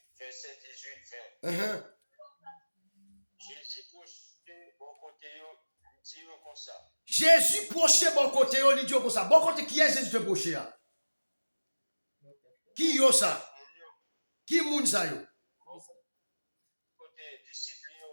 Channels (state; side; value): inverted; both; correlation -1.00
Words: verset 18, 20. Jésus proche bon côté, dit comme ça. Jésus proche bon côté, il dit comme ça. Bon côté, qui est Jésus te proche? Qui est ça? Qui est ça?